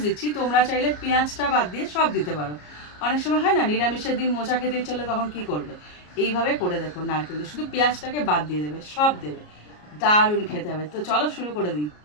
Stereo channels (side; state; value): right; late; 33 ms